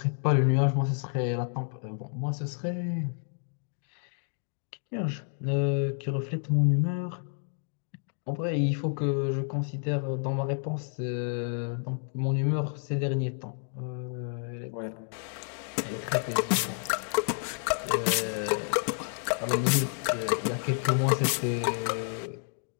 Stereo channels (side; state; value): right; silent; 58 dB below the other